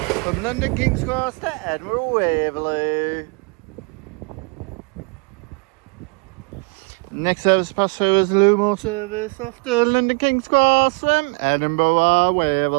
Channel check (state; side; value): quieter; left; 30.9 dB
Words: From London King's Cross to Edinburgh Waverley. Next service pass through is the LUMO service off to London King's Cross from Edinburgh